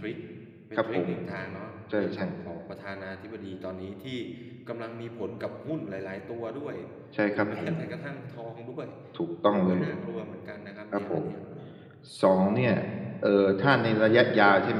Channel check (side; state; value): both; identical; correlation 1.00